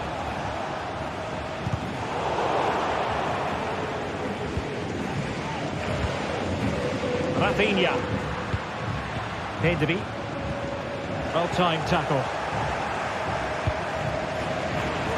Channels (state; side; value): identical; both; correlation 1.00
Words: Rafinha. Pedri. Well-timed tackle.